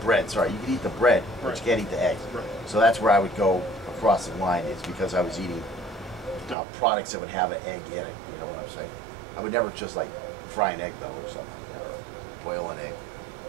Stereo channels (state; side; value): drops out; left; at 6.6 s